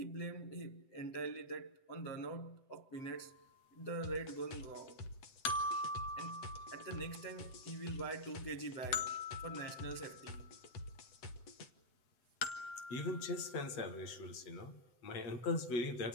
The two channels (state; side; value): late; right; 7.9 ms